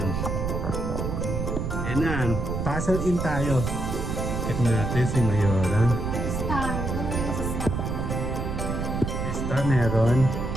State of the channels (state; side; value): noise; right; rumble, 2 dB below the sound